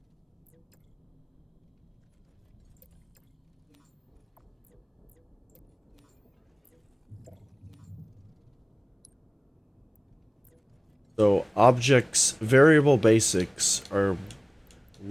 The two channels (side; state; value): both; identical; correlation 1.00